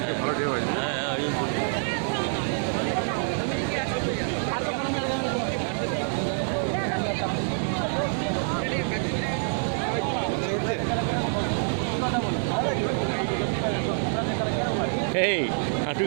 ভালো ডে হয়। এই হাঁটু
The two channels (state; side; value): silent; left; 61 dB below the other